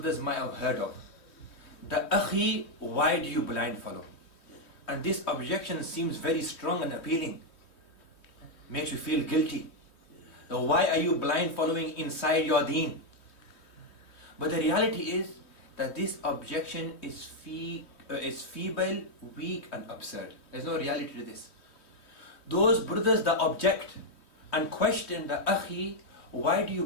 might have heard of. The Akhi, why do you blind follow? And this objection seems very strong and appealing. Makes you feel guilty. Now, why are you blind following inside your deen? But the reality is that this objection is feeble, weak and absurd. There's no reality to this. Those brothers that object and question the Akhi, why do you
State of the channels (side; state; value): right; late; 3.2 ms